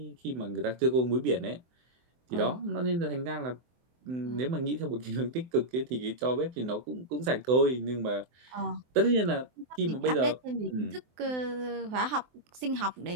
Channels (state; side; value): late; left; 24 ms